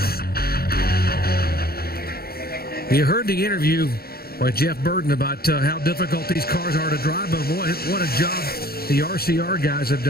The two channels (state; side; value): late; right; 0.45 ms